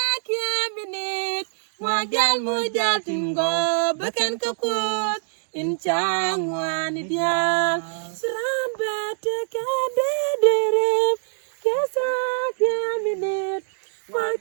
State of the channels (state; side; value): silent; left; digital silence